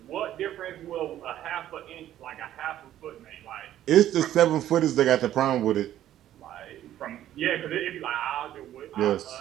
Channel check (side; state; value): left; quieter; 12.3 dB